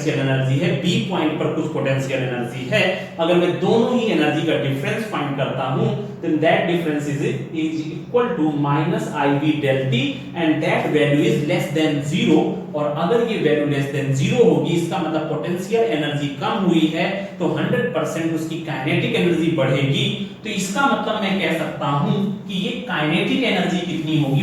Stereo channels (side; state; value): both; identical; correlation 1.00